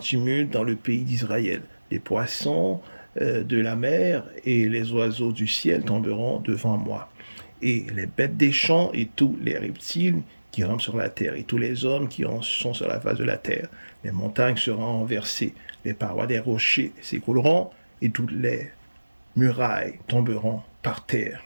dans le pays d'Israël. Les poissons de la mer et les oiseaux du ciel tomberont devant moi. Et les bêtes des champs et tous les reptiles qui rampent sur la terre et tous les hommes qui sont sur la face de la terre. Les montagnes seront renversées, les parois des rochers s'écrouleront et toutes les murailles tomberont par terre.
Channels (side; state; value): both; inverted; correlation -1.00